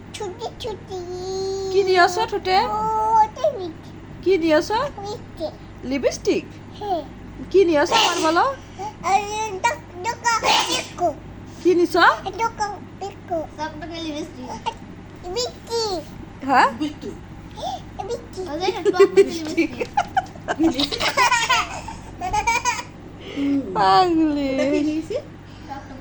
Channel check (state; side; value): identical; both; correlation 1.00